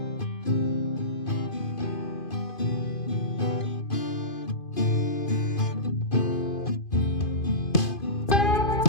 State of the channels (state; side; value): late; right; 2.5 ms